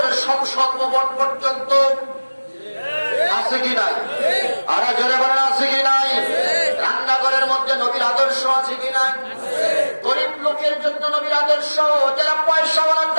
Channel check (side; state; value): both; inverted; correlation -1.00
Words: সংসদ ভবন পর্যন্ত আছে কি নাই? আর জোরে বলেন আছে কি নাই? রান্নাঘরের মধ্যে নবীর আদর্শ আছে কি নাই? গরিব লোকের জন্য নবীর আদর্শ, যারা পয়সাওয়ালা